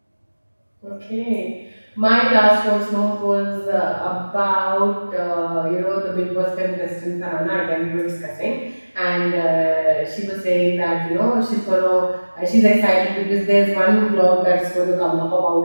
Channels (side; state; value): both; inverted; correlation -1.00